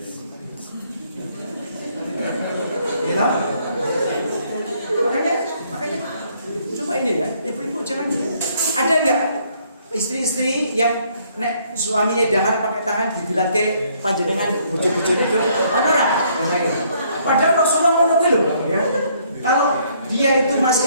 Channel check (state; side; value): inverted; both; correlation -0.66